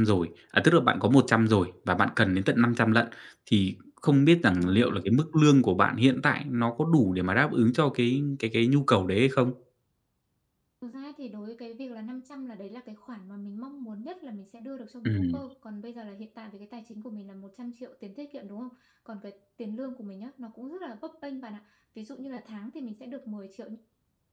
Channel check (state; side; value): identical; both; correlation 1.00